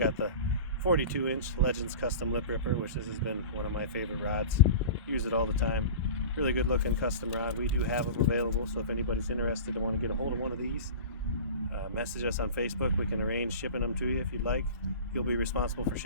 the 42-inch Legends Custom Lip Ripper, which has been one of my favorite rods. Use it all the time. Really good looking custom rod. We do have them available, so if anybody's interested and want to get a hold of one of these, message us on Facebook. We can arrange shipping them to you if you'd like. You'll be responsible for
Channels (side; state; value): both; inverted; correlation -0.35